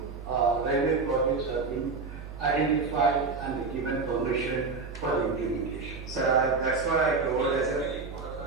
railway projects have been identified and given permission for implementation? Sir, that's what I told as a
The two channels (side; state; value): left; quieter; 4.4 dB